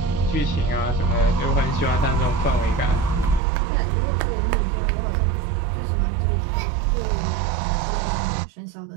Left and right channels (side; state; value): left; drops out; at 3.4 s